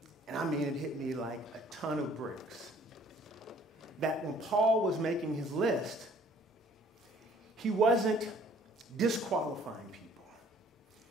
And I mean, it hit me like a ton of bricks. That when Paul was making his list, he wasn't disqualifying people.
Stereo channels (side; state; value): both; normal; correlation 0.57